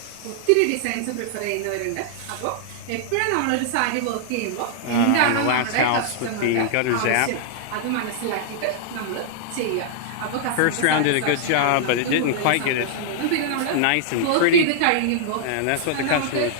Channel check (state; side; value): different; both; correlation -0.01